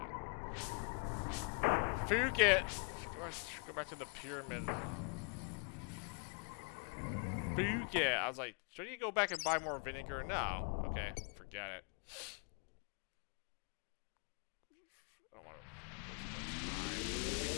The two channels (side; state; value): right; quieter; 39.2 dB